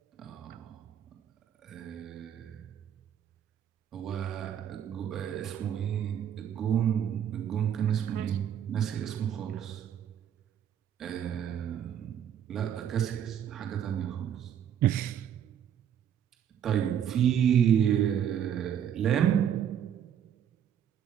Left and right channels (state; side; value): quieter; left; 9.3 dB